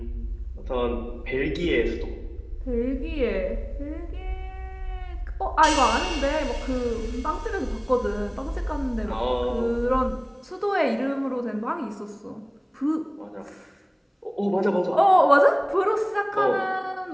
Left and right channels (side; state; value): both; identical; correlation 1.00